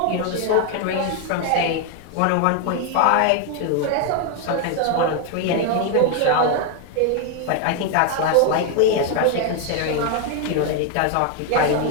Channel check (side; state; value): both; different; correlation 0.01